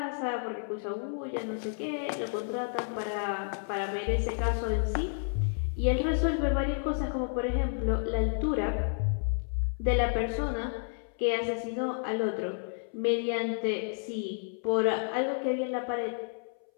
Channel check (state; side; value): silent; right; 57 dB below the other